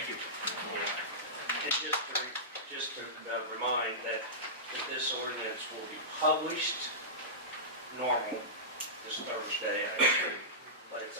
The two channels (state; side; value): normal; both; correlation -0.17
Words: you. And just to remind that this ordinance will be published normal this Thursday, I assume, but its